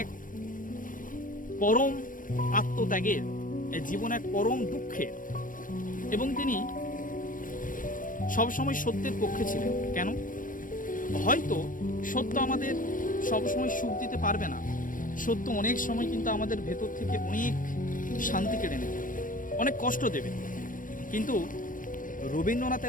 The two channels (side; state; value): right; late; 0.39 ms